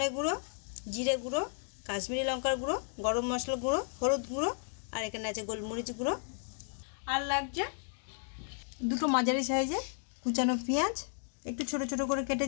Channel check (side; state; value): right; silent; 55 dB below the other